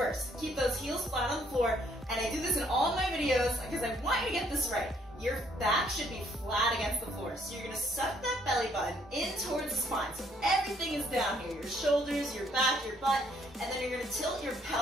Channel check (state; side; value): normal; both; correlation 0.67